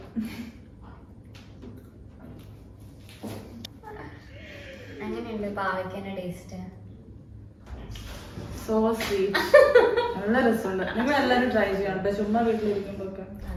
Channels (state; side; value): identical; both; correlation 1.00